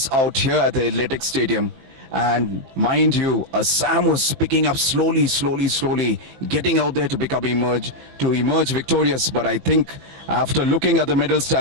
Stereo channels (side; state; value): left; late; 21 ms